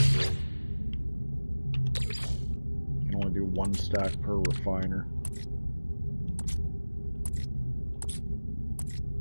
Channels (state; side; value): inverted; both; correlation -1.00